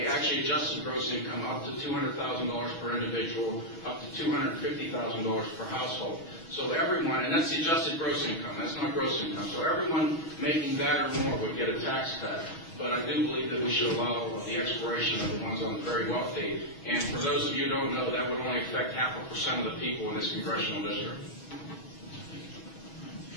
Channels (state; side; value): late; right; 6.2 ms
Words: adjusted gross income up to $200,000 per individual, up to $250,000 per household. So everyone, and that's the adjusted gross income, that's not gross income. So everyone making that or more would get a tax cut. But I do believe that we should allow the expiration of the ones on the very wealthy. And for those of you who don't know, that would only affect 0.5% of the people in this congressional district.